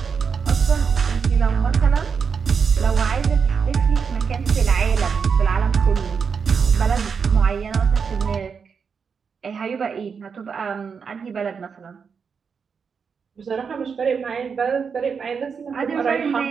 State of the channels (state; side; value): quieter; left; 6.0 dB